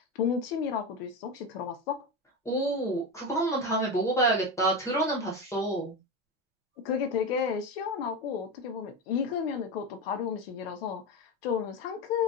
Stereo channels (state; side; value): normal; both; correlation 0.18